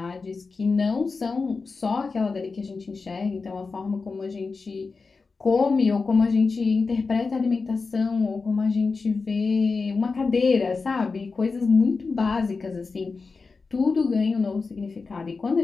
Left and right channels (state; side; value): quieter; right; 4.4 dB